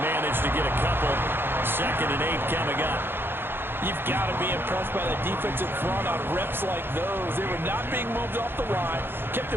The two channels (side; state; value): left; late; 0.10 ms